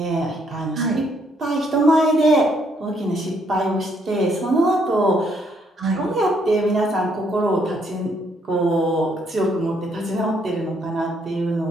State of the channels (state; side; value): normal; both; correlation 0.71